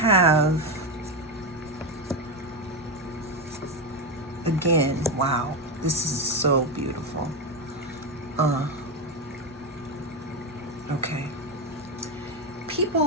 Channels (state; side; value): normal; both; correlation 0.11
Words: again, wow, this is so beautiful. Okay.